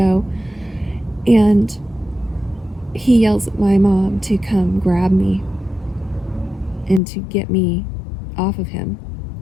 And he yells at my mom to come grab me and to get me off of him.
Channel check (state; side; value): drops out; right; at 7.0 s